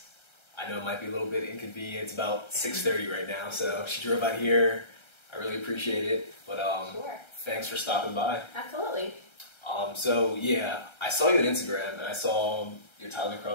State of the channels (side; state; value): right; late; 1.3 ms